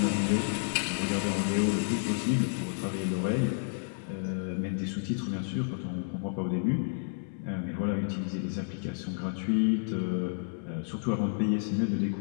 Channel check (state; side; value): silent; right; 57 dB below the other